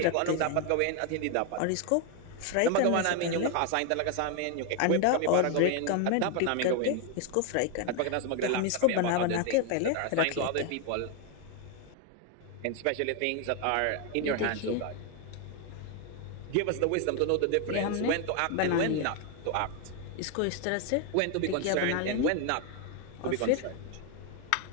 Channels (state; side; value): different; both; correlation 0.01